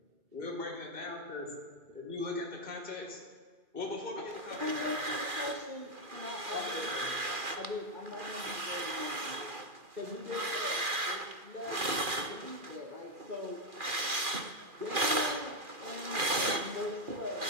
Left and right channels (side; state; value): left; late; 2.4 ms